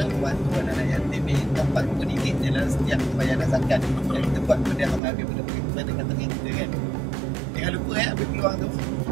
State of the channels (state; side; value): drops out; left; at 5.0 s